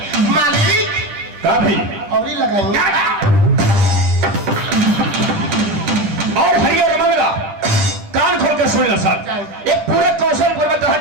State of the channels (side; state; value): left; late; 10 ms